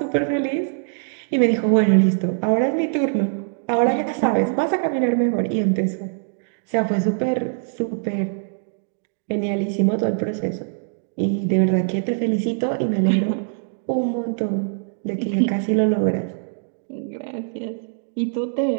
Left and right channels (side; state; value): left; silent; digital silence